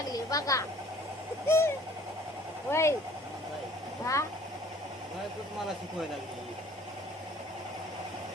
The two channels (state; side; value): normal; both; correlation 0.53